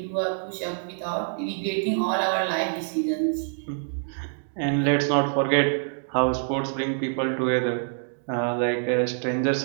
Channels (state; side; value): silent; left; digital silence